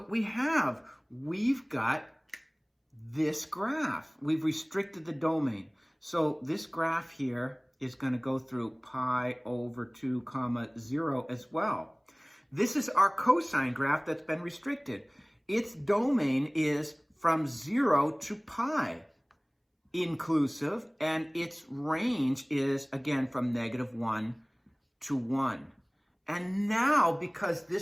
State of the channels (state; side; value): identical; both; correlation 1.00